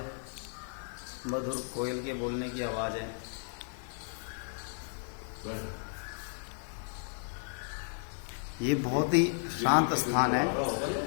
मधुर कोयल के बोलने की आवाज़ है। ये बहुत ही शांत स्थान है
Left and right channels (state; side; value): silent; right; digital silence